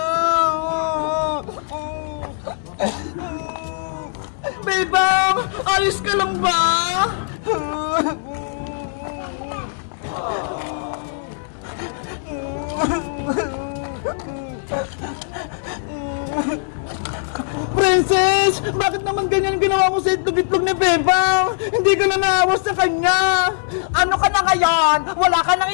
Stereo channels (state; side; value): silent; right; digital silence